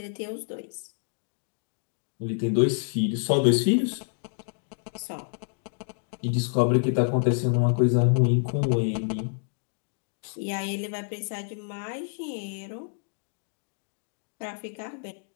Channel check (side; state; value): right; silent; 59 dB below the other